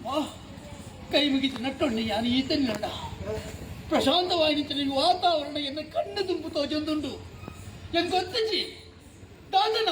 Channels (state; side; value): identical; both; correlation 1.00